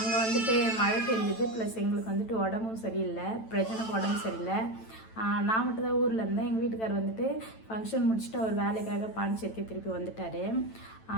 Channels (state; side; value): late; right; 9.0 ms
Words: வந்துட்டு மழை பெஞ்சுது, ப்ளஸ் எங்களுக்கு வந்துட்டு உடம்பும் சரியில்லை, பிரச்சனைக்கு உடம்பு சரியில்லை. நான் மட்டும் தான் ஊரில் இருந்தேன். எங்கள் வீட்டுக்கார் வந்துட்டு ஃபங்க்ஷன் முடிச்சுட்டு அவர் வேலைக்காக பாண்டிச்சேரிக்கு திருப்பி வந்துட்டார்.